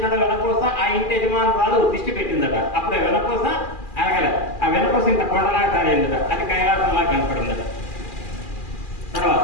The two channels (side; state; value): right; late; 2.4 ms